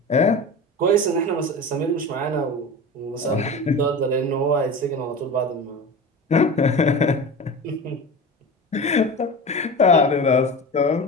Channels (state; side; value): normal; both; correlation 0.30